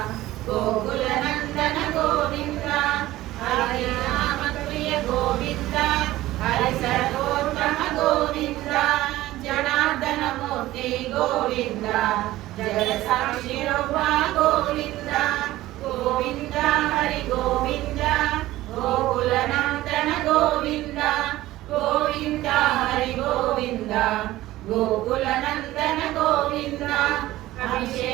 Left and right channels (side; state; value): left; quieter; 16.3 dB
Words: గోకుల నందన గోవింద హరి నామ ప్రియ గోవింద హరి సర్వోత్తమ గోవింద జనార్దన మూర్తి గోవింద జగ సాక్షి రూప గోవింద గోవింద హరి గోవింద గోకుల నందన గోవింద గోవింద హరి గోవింద గోకుల నందన గోవింద